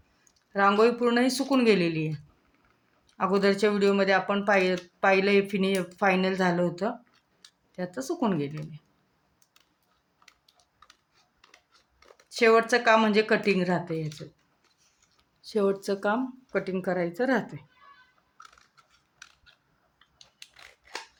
रांगोळी पूर्ण ही सुकून गेलेली आहे. अगोदरच्या व्हिडिओमध्ये आपण पाहिलं फायनल झालं होतं, ते आता सुकून गेलेलं आहे. शेवटचं काम म्हणजे कटिंग राहते. याचं शेवटचं काम कटिंग करायचं राहते.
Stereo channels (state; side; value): identical; both; correlation 1.00